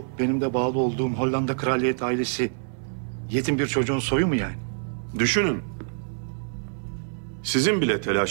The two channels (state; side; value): silent; left; 60 dB below the other